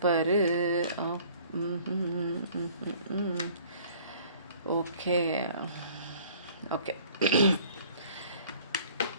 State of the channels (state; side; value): inverted; both; correlation -0.53